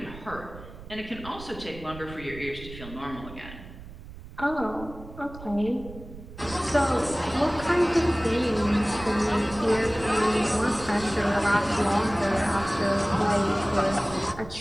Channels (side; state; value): right; noise; rumble, 15 dB below the sound